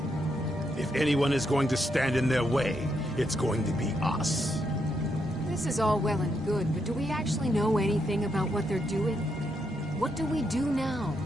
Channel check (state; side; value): normal; both; correlation 0.79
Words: If anyone is going to stand in their way, it's going to be us. This is all well and good, but do we actually know anything about what they're doing? What do we do now?